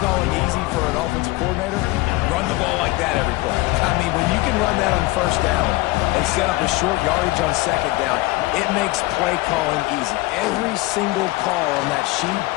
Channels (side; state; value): right; quieter; 20.3 dB